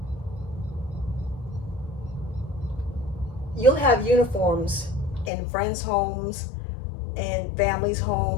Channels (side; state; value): right; drops out; at 5.3 s